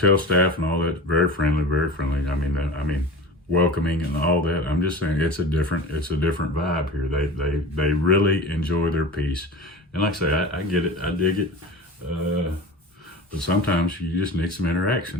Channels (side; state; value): both; normal; correlation 0.33